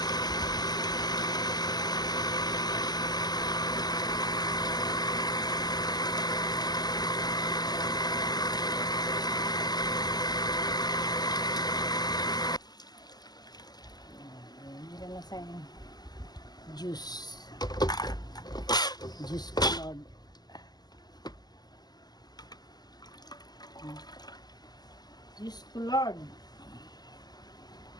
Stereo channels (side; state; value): right; late; 0.20 ms